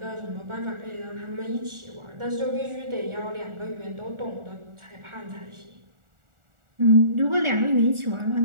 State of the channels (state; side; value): late; left; 1.4 ms